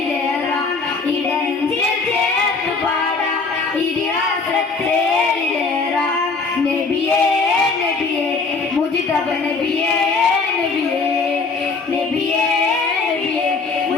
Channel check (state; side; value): quieter; right; 4.3 dB